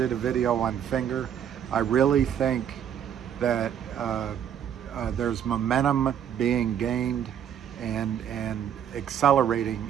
a video on Finger. I really think that there's momentum being gained and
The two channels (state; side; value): quieter; left; 9.2 dB